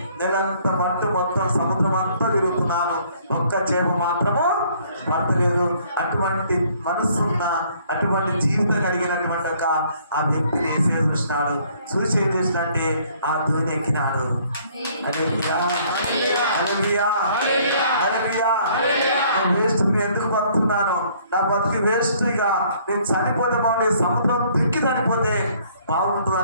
నెలంతా పట్టు మొత్తం సముద్రం అంతా తిరుగుతున్నాను, ఒక్క చేప మాత్రము పడతలేదు. అటువంటి మనసున్న, అటువంటి జీవితం కలిగినటువంటి ఒక ఆ వ్యక్తిని ఏసయ్య చూసినాడు. చూసి ఏం చేసినంటే ఆ దోణి ఎక్కినాడు. వేస్ట్, నేను ఎందుకు బతుకున్నాను, నా బతికి వేస్ట్, ఇక నేను చనిపోతే బాగుండే, సముద్రం దిక్కి చనిపోతే బాగుంటుంది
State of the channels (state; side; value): inverted; both; correlation -0.61